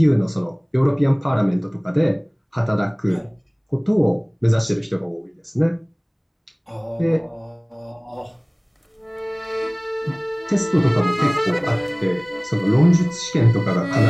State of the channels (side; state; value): both; identical; correlation 1.00